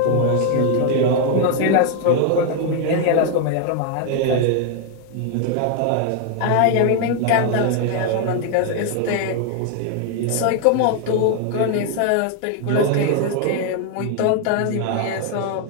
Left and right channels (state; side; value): different; both; correlation 0.01